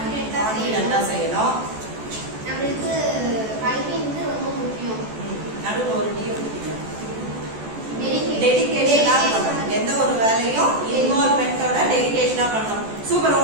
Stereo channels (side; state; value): left; late; 14 ms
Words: செய்யணும். நம்மளுக்கு கல்வி வந்து ரொம்ப முக்கியம். நடுவுல ஒரு டீ ஊத்திங்க. டெடிகேஷனா பண்ணணும். எந்த ஒரு வேலையும் இன்வால்வ்மென்ட்டோட டெடிகேஷனா பண்ணணும். சூப்பர்.